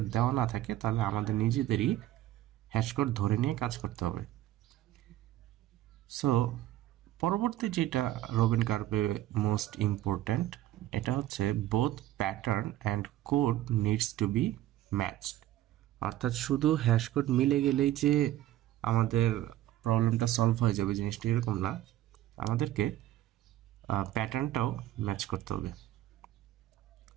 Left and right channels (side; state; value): left; quieter; 14.1 dB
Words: দেওয়া না থাকে তাহলে আমাদের নিজেদেরই হ্যাশ কোড ধরে নিয়ে কাজ করতে হবে। সো পরবর্তী যেটা রবিন কার্ভে মোস্ট ইম্পর্ট্যান্ট, এটা হচ্ছে both pattern and code needs to be matched. অর্থাৎ শুধু হ্যাশ কোড মিলে গেলেই যে আমাদের প্রবলেমটা সলভ হয়ে যাবে জিনিসটা এরকম না, আমাদেরকে প্যাটার্নটাও ম্যাচ করতে হবে।